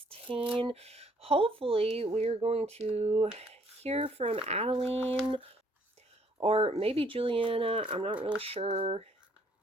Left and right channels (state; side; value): normal; both; correlation 0.64